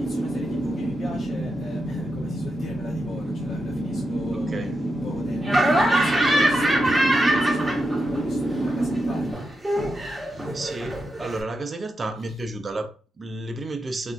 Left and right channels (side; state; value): both; normal; correlation 0.86